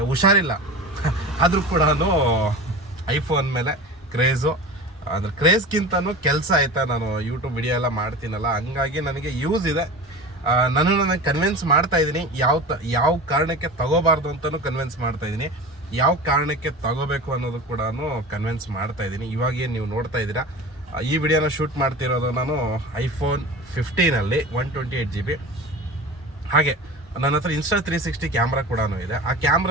ಹುಷಾರಿಲ್ಲ ಆದರೂ ಕೂಡ ಐಫೋನ್ ಮೇಲೆ ಕ್ರೇಜು. ಅಂದರೆ ಕ್ರೇಜ್ಗಿಂತನೂ ಕೆಲಸ ಆಯಿತಾ, ನಾನು ಯೂಟ್ಯೂಬ್ ವಿಡಿಯೋ ಎಲ್ಲ ಮಾಡ್ತೀನಲ್ಲ, ಹಂಗಾಗಿ ನನಗೆ ಯೂಸ್ ಇದೆ. ನನಗೆ ಕನ್ವಿನ್ಸ್ ಮಾಡ್ತಾಯಿದ್ದೀನಿ ಯಾವ ಕಾರಣಕ್ಕೆ ತಗೋಬಾರ್ದು ಅಂತಲೂ ಕನ್ವಿನ್ಸ್ ಮಾಡ್ತಾಯಿದ್ದೀನಿ, ಯಾವ ಕಾರಣಕ್ಕೆ ತಗೋಬೇಕು ಅನ್ನೋದು ಕೂಡ ಕನ್ವಿನ್ಸ್ ಮಾಡ್ತಾಯಿದ್ದೀನಿ. ಇವಾಗೇನು ನೀವು ನೋಡ್ತಾ ಇದ್ದೀರಾ, ಈ ವಿಡಿಯೋನ ಶೂಟ್ ಮಾಡ್ತಿರೋದು ನಾನು ಐಫೋನ್ 15ಅಲ್ಲಿ 128 GB. ಹಾಗೆ ನನ್ನ ಹತ್ರ ಇನ್ಸ್ಟಾ 360 ಕ್ಯಾಮ್ರಾ ಕೂಡ ಇದೆ. ಆ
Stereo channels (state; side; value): normal; both; correlation 0.32